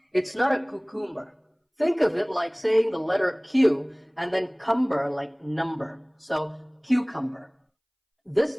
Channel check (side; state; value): both; identical; correlation 1.00